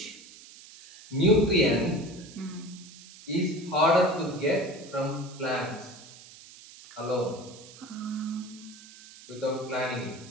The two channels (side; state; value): right; noise; hiss, 19 dB below the sound